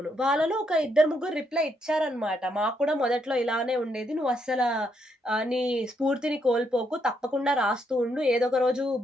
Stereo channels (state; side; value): normal; both; correlation 0.76